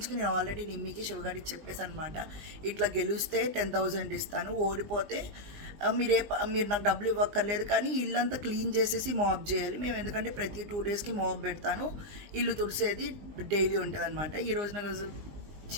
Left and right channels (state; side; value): late; left; 20 ms